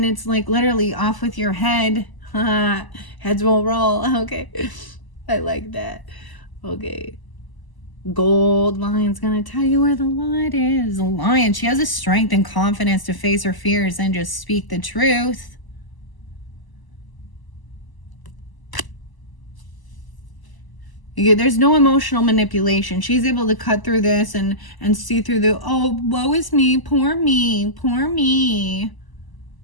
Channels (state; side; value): late; right; 1.0 ms